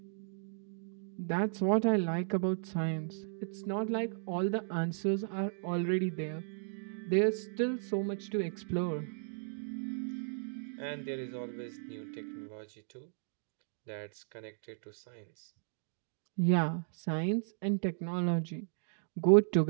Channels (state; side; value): silent; left; digital silence